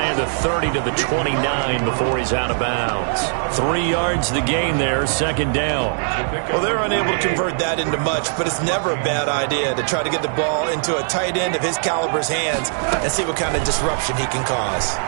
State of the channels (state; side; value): silent; left; 65 dB below the other